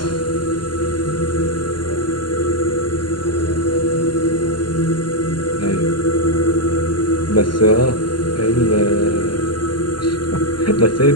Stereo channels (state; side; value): late; right; 0.72 ms